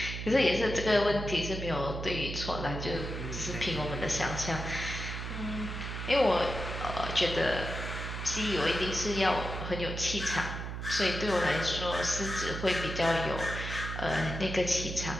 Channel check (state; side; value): noise; right; hum, 6 dB below the sound